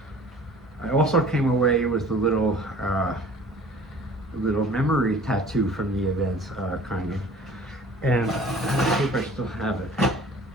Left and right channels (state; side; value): normal; both; correlation 0.48